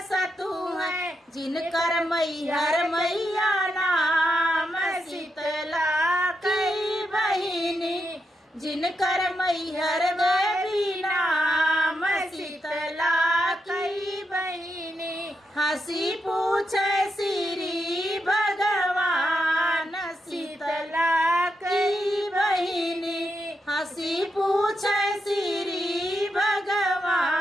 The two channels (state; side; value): normal; both; correlation 0.84